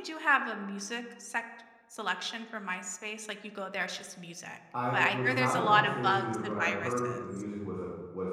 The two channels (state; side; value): identical; both; correlation 1.00